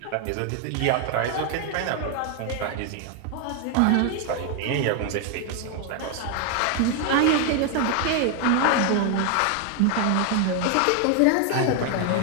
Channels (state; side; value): different; both; correlation 0.00